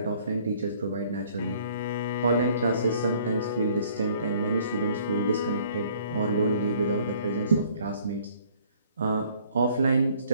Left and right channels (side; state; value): both; inverted; correlation -0.59